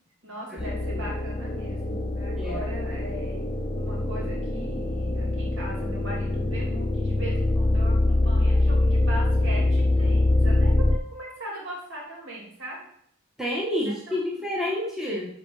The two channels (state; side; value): normal; both; correlation 0.90